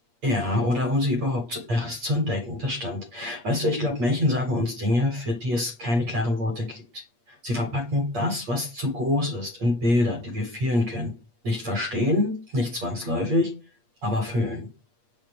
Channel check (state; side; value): late; left; 8.5 ms